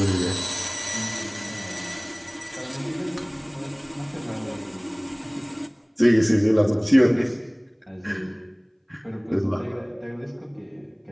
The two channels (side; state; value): both; identical; correlation 1.00